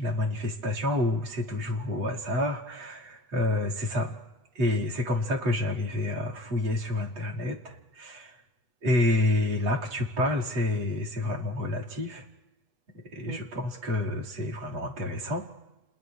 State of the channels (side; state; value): left; late; 8.2 ms